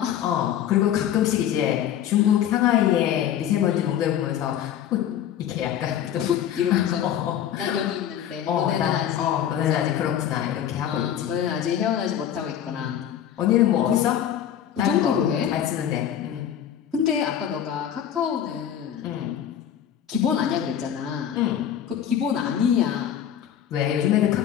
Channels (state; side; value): quieter; right; 10.1 dB